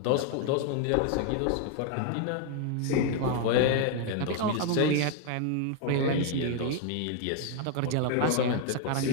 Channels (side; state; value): both; different; correlation 0.00